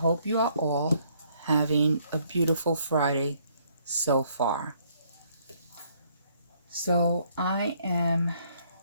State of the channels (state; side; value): inverted; both; correlation -0.67